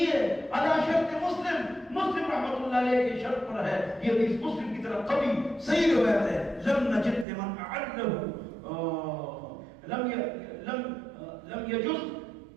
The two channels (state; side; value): drops out; left; at 7.2 s